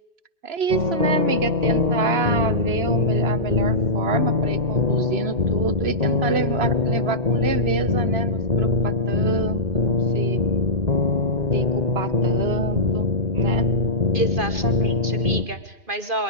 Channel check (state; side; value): late; left; 3.0 ms